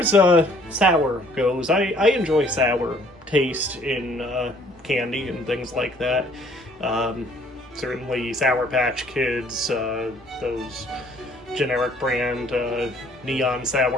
sour goes, I enjoy sour taste in candy and things like that. Certainly Sour Patch Kids, those generic brand neon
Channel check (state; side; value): normal; both; correlation 0.59